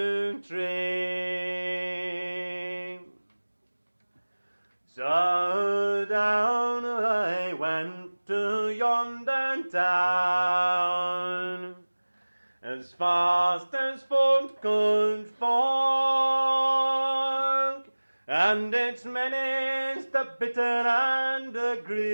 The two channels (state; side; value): inverted; both; correlation -1.00